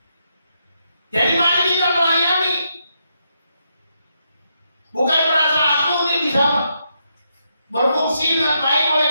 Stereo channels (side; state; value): both; inverted; correlation -0.80